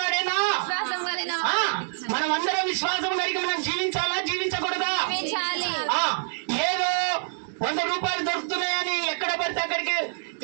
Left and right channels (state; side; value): silent; left; 57 dB below the other